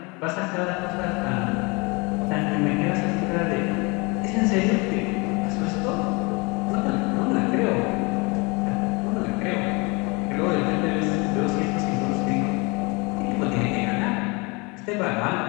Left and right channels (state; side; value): quieter; right; 27.8 dB